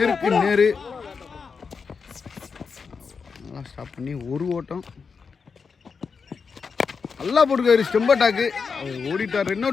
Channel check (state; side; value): quieter; right; 5.4 dB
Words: நேரு. நல்லா ஸ்டாப் பண்ணி ஒரு ஓட்டம் நல்லா போட்டிருக்காரு. Stumper dog ஓடிட்டார். ரன்